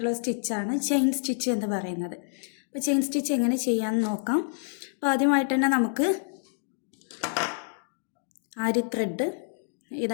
സ്റ്റിച്ചാണ് ചെയിൻ സ്റ്റിച്ച് എന്ന് പറയുന്നത്. അപ്പോൾ ചെയിൻ സ്റ്റിച്ച് എങ്ങനെ ചെയ്യാമെന്ന് നോക്കാം. അപ്പോൾ ആദ്യമായിട്ട് തന്നെ നമുക്ക് ആരി ത്രെഡ്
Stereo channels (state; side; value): silent; right; digital silence